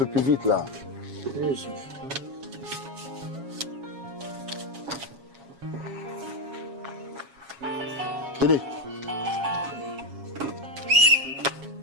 plus vite là. Oui, Tenez.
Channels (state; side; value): late; left; 7.3 ms